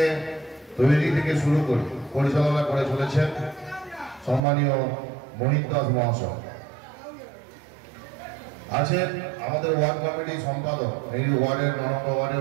তৈরি থেকে শুরু করে পরিচালনা করে চলেছেন সম্মানীয় মোহিত দাস মহাশয়। আছেন আমাদের ওয়ার্ড কমিটির সম্পাদক, এই ওয়ার্ডের ৯ নম্বর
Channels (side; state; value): left; drops out; at 4.4 s